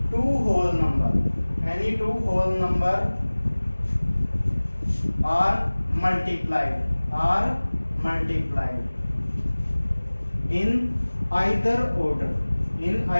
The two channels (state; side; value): inverted; both; correlation -1.00